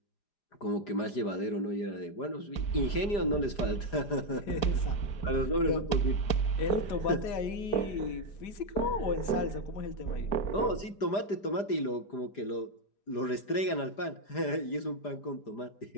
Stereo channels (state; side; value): late; right; 4.9 ms